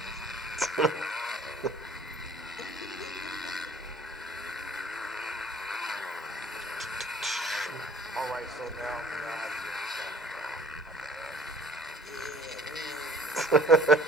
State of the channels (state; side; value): normal; both; correlation 0.51